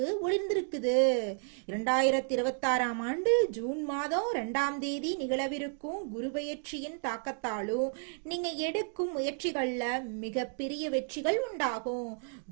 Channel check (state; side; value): silent; left; 56 dB below the other